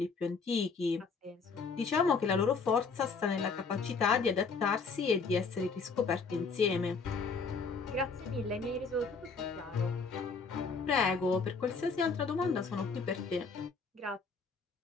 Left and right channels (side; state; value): right; quieter; 4.8 dB